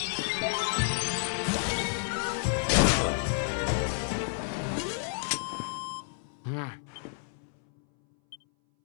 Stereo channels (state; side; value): silent; right; 58 dB below the other